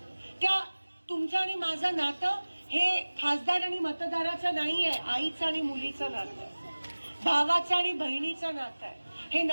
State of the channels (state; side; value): inverted; both; correlation -1.00